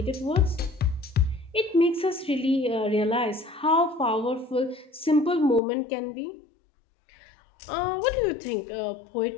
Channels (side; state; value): right; drops out; at 5.6 s